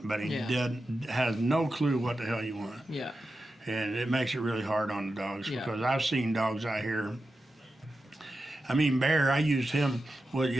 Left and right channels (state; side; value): normal; both; correlation 0.91